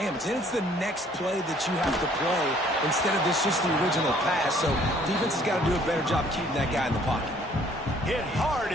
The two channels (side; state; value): both; normal; correlation 0.60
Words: Then it's the next play that you have to play instead of this just the original pass. So defense has got to do a better job keeping that guy in the pocket. Hit hard